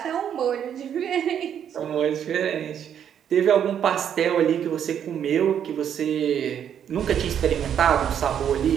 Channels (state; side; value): quieter; left; 9.0 dB